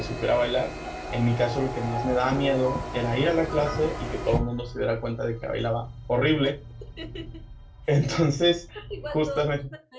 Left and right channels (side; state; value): both; identical; correlation 1.00